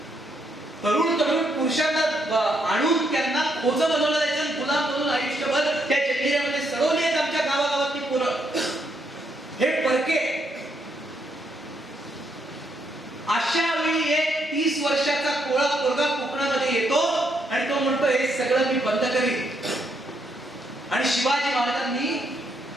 तरुण पुरुषांना आणून त्यांना खोज बनवलं जायचं, गुलाम बनवून आयुष्यभर त्या जंजिऱ्यामध्ये सडवली आहेत आमच्या गावागावातली पोरं. हे परके. अशा वेळी एक 30 वर्षाचा कोळा पोरगा कोकणामध्ये येतो आणि तो म्हणतो हे सगळं मी बंद करीन. आणि शिवाजी महाराजांनी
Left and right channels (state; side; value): normal; both; correlation 0.76